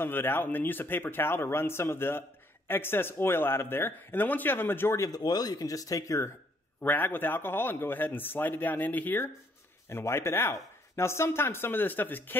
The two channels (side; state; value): both; normal; correlation 0.68